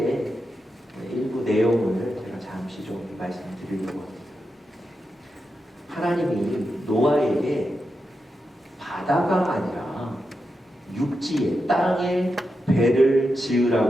일부 내용을 제가 잠시 좀 말씀드리려고 합니다. 하나님이 노아에게 바다가 아니라 육지에 땅에 배를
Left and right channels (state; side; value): normal; both; correlation 0.88